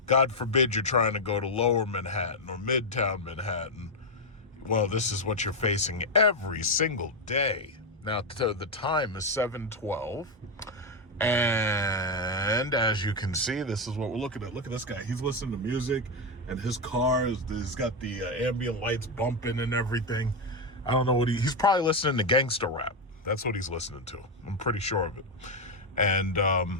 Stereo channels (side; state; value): both; normal; correlation 0.05